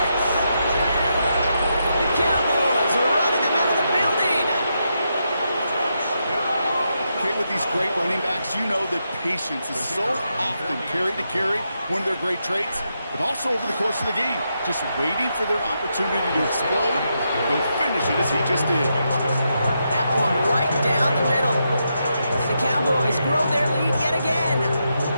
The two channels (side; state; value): both; inverted; correlation -0.83